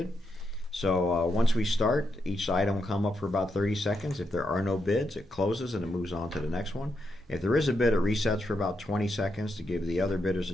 So once we start, each item will come up for about 30 seconds. If there are no bids, it closes and it moves on to the next one. If there is a bid, it resets for about 20 seconds to give the other bidders a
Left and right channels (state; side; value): normal; both; correlation 0.82